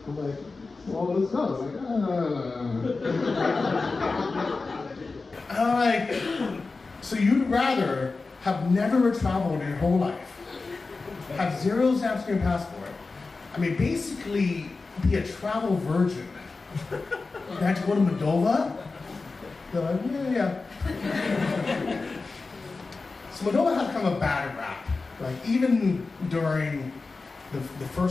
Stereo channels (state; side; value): quieter; right; 3.9 dB